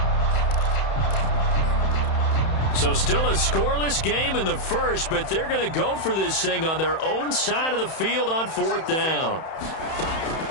So still a scoreless game in the first, but they're going to go for this thing on their own side of the field on 4th down.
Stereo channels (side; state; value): right; late; 31 ms